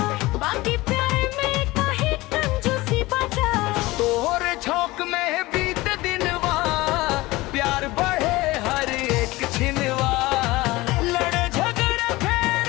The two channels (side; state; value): right; quieter; 20.1 dB